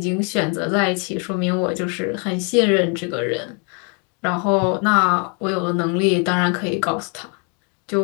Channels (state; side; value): quieter; right; 36.8 dB